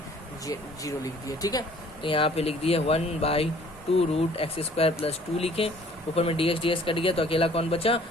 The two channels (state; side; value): normal; both; correlation 0.55